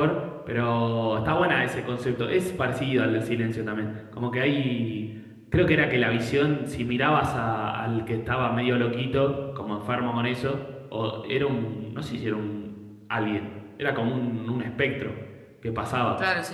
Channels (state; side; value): identical; both; correlation 1.00